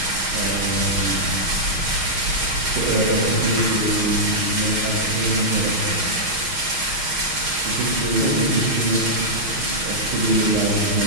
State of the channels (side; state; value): left; late; 6.4 ms